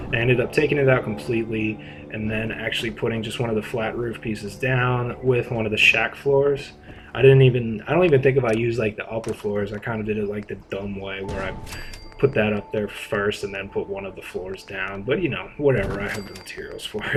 I ended up taking it out completely, and then actually putting just one of the flat roof pieces down with one of the shack floors. I don't even think if I used like the upper floors. I kind of did it like the dumb way, where I put that up there first and then put one of the floors down. But you know, whatever, I have the materials for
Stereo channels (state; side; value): identical; both; correlation 1.00